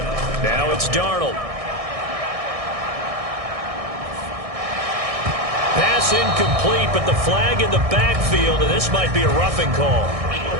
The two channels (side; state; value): left; late; 1.6 ms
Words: Now it's Darnold. Pass incomplete, but the flag in the backfield, and this might be a roughing call.